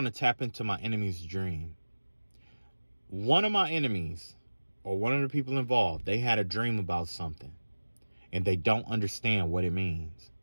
to tap into my enemy's dream. One of my enemies, or one of the people involved, they had a dream about something and they don't understand what it means.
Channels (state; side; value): inverted; both; correlation -1.00